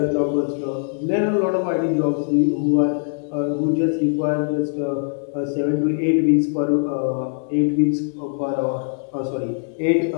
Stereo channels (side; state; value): right; silent; digital silence